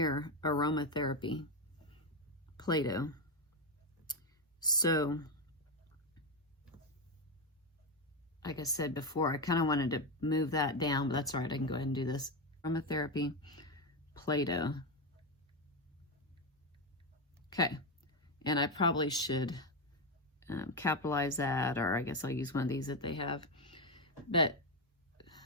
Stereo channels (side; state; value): both; normal; correlation 0.09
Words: aromatherapy, Play-Doh. So like I said before, I kind of wanted to move that down, but that's all right. I can go ahead and do this. Aromatherapy, Play-Doh. Okay. And I probably should capitalize that, or I guess I'll use one of these that they have. But